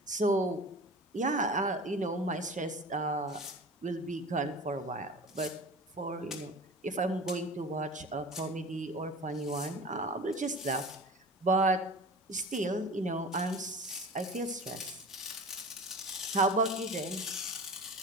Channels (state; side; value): normal; both; correlation 0.36